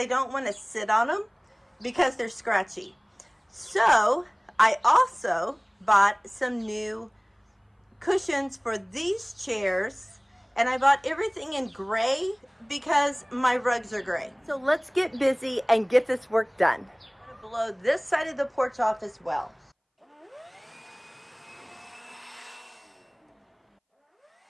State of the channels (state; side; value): identical; both; correlation 1.00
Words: don't want to sit on them because they're scratchy. So I also bought some new cushions for these chairs, and I bought everything in gray because my rugs are gray. So let's get busy and get this work done. I'm going to blow this side of the porch off as well.